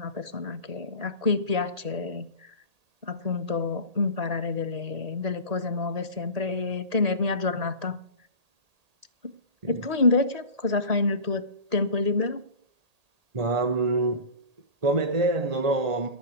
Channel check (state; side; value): late; left; 1.8 ms